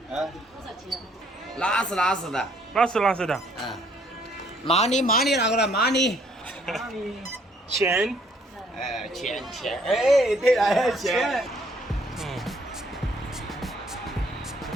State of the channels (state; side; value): normal; both; correlation 0.64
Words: 多少钱？拉丝的。拉丝的。money 那个了 money。钱。钱，哎，对了，钱。